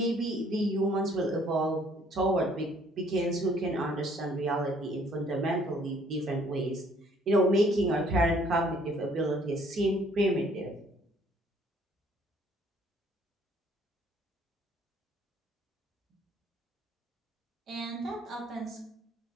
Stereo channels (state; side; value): normal; both; correlation 0.61